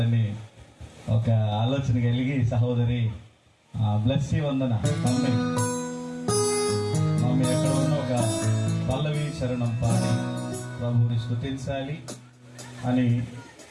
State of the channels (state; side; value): identical; both; correlation 1.00